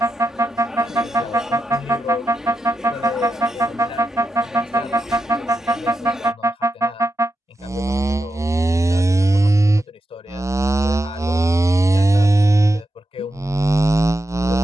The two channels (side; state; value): both; normal; correlation 0.88